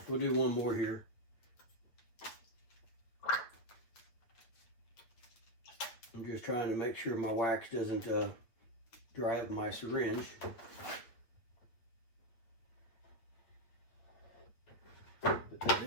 We'll do one more here. I'm just trying to make sure my wax doesn't dry up my syringe. Put that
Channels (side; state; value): right; late; 8.6 ms